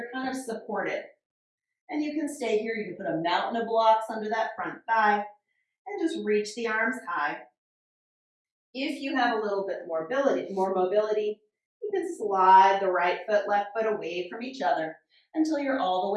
kind of supported. And you can stay here. You can put a mountain of blocks under that front thigh and just reach the arms high. If you have a little bit more mobility, you can slide the right foot, left foot away from each other until you're all the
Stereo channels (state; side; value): identical; both; correlation 1.00